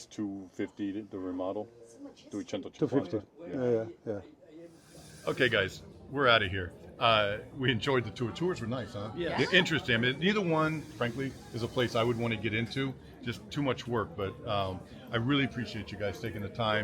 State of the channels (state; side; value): identical; both; correlation 1.00